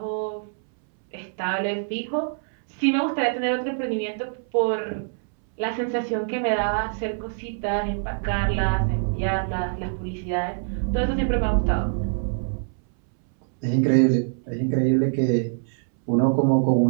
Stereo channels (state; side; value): silent; left; 62 dB below the other